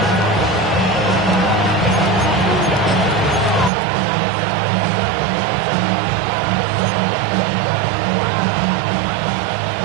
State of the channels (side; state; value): left; drops out; at 3.7 s